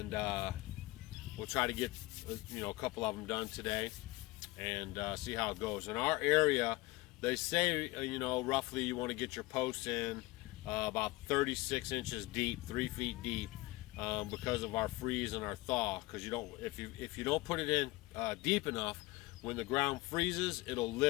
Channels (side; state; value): right; quieter; 21.3 dB